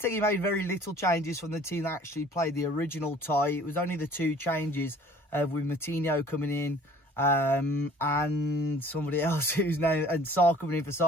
made very little changes from the team that actually played the original tie. It was only the 2 changes with Moutinho coming in and somebody else whose name, and Sarr coming in for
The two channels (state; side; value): normal; both; correlation 0.51